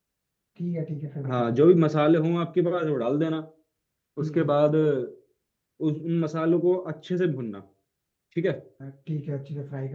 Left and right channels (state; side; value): identical; both; correlation 1.00